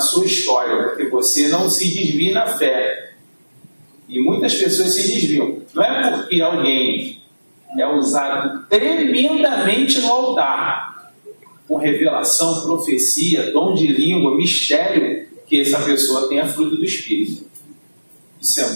história, porque você não se desvia na fé. E muitas pessoas se desviam. Não é porque alguém é usado tremendamente no altar, com revelação, profecia, dom de língua, mistério, que essa pessoa tenha fruto do Espírito. Isso é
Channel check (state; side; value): inverted; both; correlation -1.00